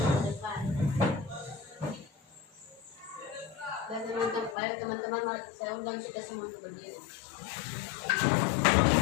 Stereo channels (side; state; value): right; drops out; at 4.5 s